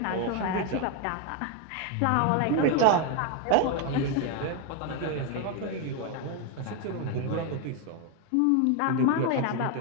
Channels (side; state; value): both; different; correlation 0.01